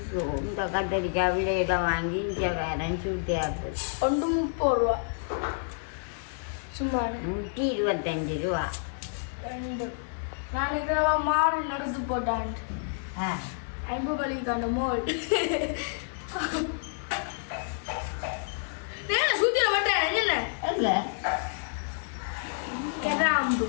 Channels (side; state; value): right; silent; 59 dB below the other